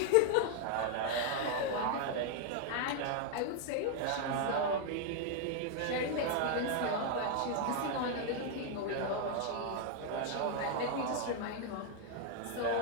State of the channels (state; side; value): different; both; correlation 0.00